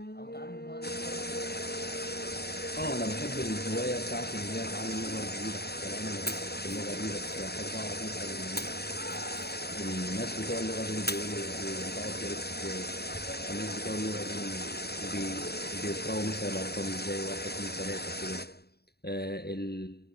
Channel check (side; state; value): right; late; 0.47 ms